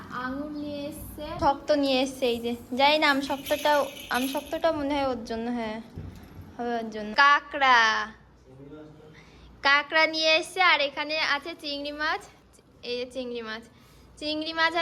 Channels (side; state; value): both; identical; correlation 1.00